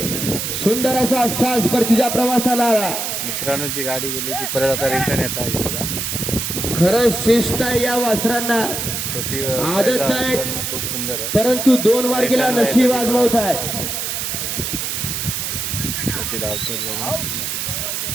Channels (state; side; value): noise; right; hiss, 2 dB below the sound